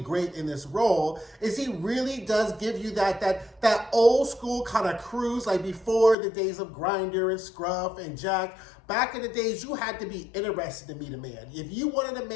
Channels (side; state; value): right; drops out; at 6.2 s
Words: in this role is he really does give you that old school kind of cruise, like before the days of Grindr and Scruff and Jack. Back in the days, you had to be interested to meet a man. If you wanted a